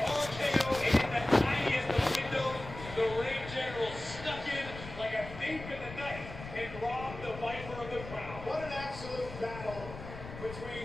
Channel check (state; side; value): noise; left; rumble, 12 dB below the sound